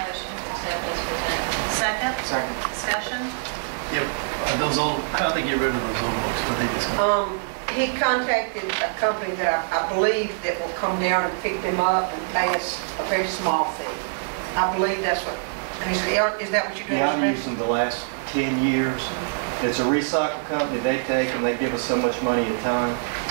motion to accept as presented. Second? Second. Discussion? Yep. Those old, how do they get rid of those old books? What they just, He contacted a company that I believe that will come down and pick them up and pay us a very small fee. I believe that's what, is that what you're doing? Yeah, I've used them the last 10 years. It's a recycle company. They take them, they give us so much money a ton,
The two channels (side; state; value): left; silent; digital silence